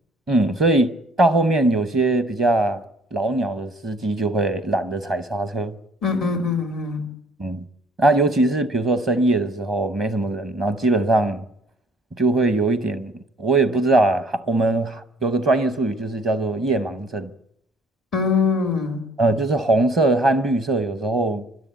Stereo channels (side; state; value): both; normal; correlation 0.58